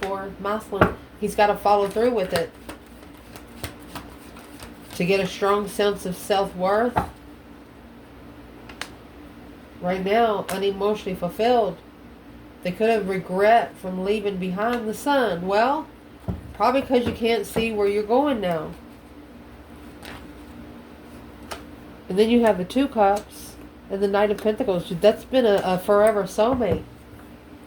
for. Masculine. He's got to follow through with it. To get a strong sense of self-worth. Right now, unemotionally fulfilled. They could have regret from leaving behind the sun. Well, probably because you can't see where you're going now. And then you have the Two Cups and the Knight of Pentacles. That's been a forever soulmate.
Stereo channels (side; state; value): both; identical; correlation 1.00